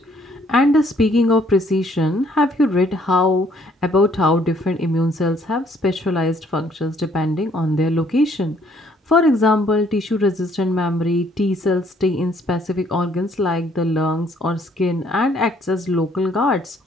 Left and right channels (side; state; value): both; normal; correlation 0.64